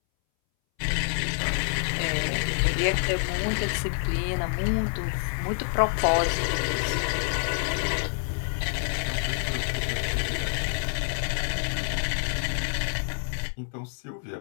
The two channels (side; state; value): right; silent; 60 dB below the other